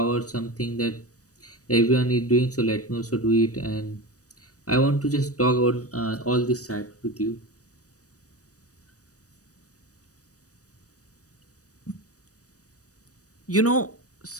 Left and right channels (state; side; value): late; right; 0.66 ms